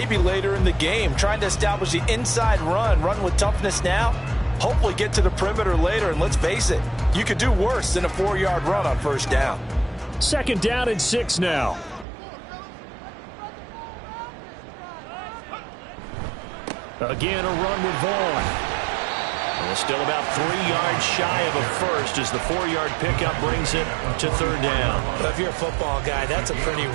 later in the game, trying to establish the inside run with toughness now, hopefully get to the perimeter later. And let's face it, you could do worse than a 4-yard run on 1st down. 2nd down and 6 now. Again, a run with Vaughn. Well, still about 3 yards shy of a first as the 4-yard pickup brings it to 3rd down. Well, if you're a football guy, that's a pretty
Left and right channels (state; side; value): drops out; left; at 12.1 s